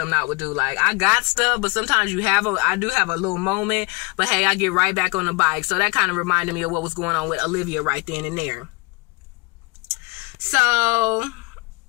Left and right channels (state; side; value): quieter; right; 27.8 dB